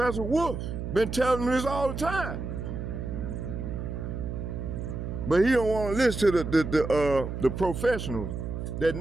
Wolf, been telling me this all the time, but he don't want to listen to the professionals that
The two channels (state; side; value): noise; right; hum, 5 dB below the sound